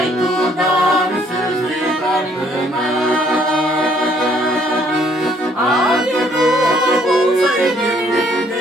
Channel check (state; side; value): normal; both; correlation 0.64